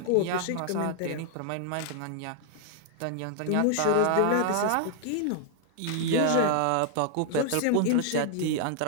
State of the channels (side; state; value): both; different; correlation 0.00